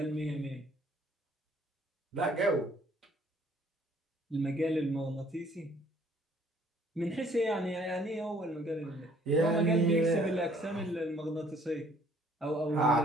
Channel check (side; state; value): both; normal; correlation 0.60